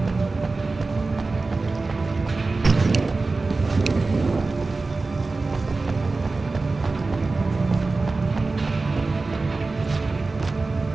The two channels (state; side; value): quieter; left; 3.6 dB